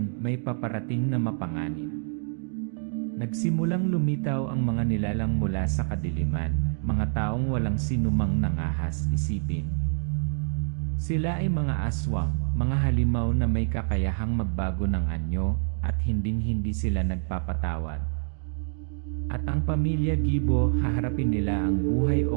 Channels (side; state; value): left; silent; 58 dB below the other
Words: may paparating na mapanganib. Nagsimulang lumitaw ang mga nilalang mula sa kadiliman, mga taong walang sinumang nangahas isipin. Sila ay mga aswang, mga halimaw na may kakayahang magbago ng anyo at hinding-hindi sila nagpapatawad. At ang pamilya Gibo, haharapin nila ang buhay